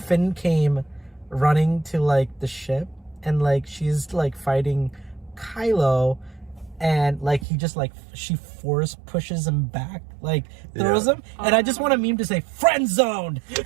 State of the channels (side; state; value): left; drops out; at 7.5 s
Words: came running to like the ship and like she's like fighting Kylo. And like he just like she force pushes him back, like throws him, and I just want a meme to say "friend zoned" because